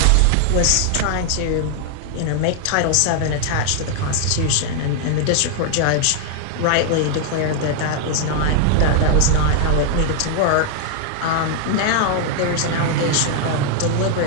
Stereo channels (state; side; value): different; both; correlation 0.00